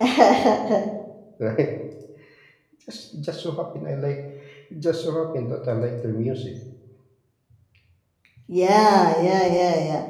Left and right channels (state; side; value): identical; both; correlation 1.00